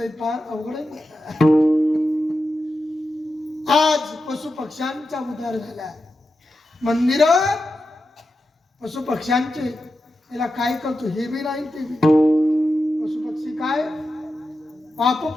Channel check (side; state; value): both; normal; correlation 0.90